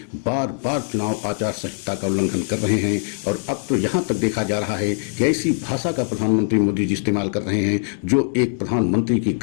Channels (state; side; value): silent; right; 64 dB below the other